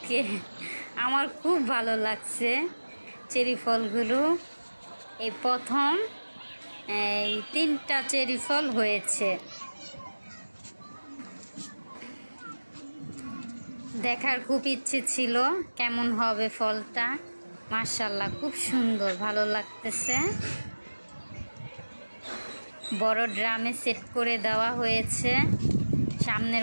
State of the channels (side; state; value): both; inverted; correlation -1.00